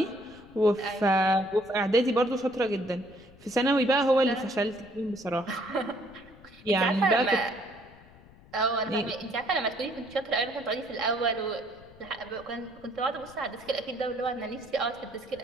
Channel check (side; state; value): left; noise; rumble, 23 dB below the sound